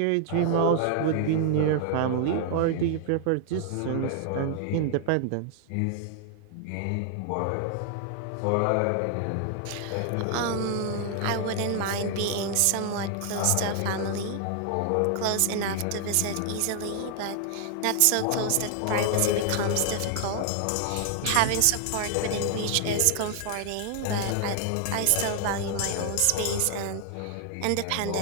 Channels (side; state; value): both; different; correlation 0.00